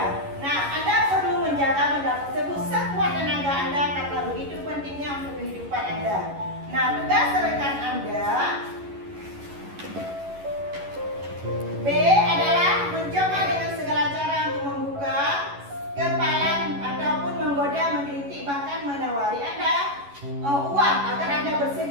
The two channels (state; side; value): late; left; 11 ms